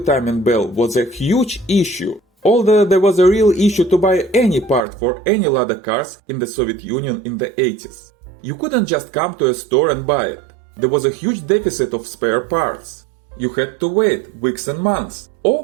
belt was a huge issue, although there was a real issue to buy any part for any Lada cars in the Soviet Union in the 80s. You couldn't just come to a store and buy it. There was a huge deficit of spare parts. You had to wait weeks and months,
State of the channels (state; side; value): drops out; left; at 4.8 s